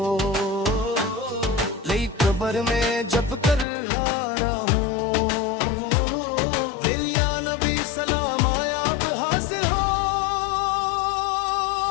ले कब्र में जब कर हारा हूँ। दिल या नबी सलाम आया अब हासिल हो।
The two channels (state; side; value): drops out; right; at 3.7 s